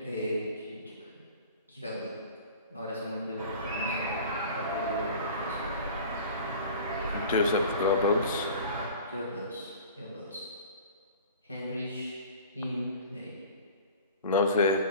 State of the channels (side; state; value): both; inverted; correlation -0.41